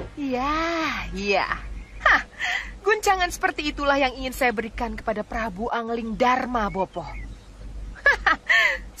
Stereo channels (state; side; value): identical; both; correlation 1.00